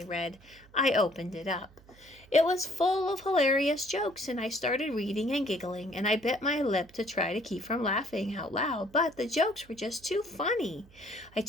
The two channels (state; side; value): noise; right; hum, 25 dB below the sound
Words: read. I opened it up. It was full of hilarious jokes, and I started reading and giggling, and I bit my lip to try to keep from laughing out loud, but the jokes were just too funny. I